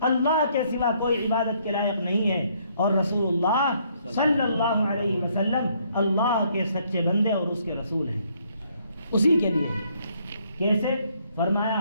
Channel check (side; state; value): both; inverted; correlation -0.68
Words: اللہ کے سوا کوئی عبادت کے لائق نہیں ہے اور رسول اللہ صلی اللہ علیہ وسلم اللہ کے سچے بندے اور اس کے رسول ہیں، اسی کے لیے ہے۔ کیسے؟